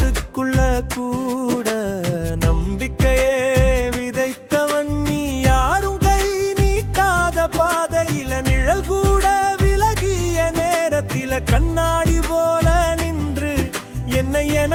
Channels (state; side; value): identical; both; correlation 1.00